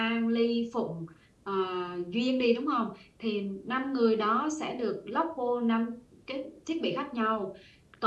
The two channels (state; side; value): identical; both; correlation 1.00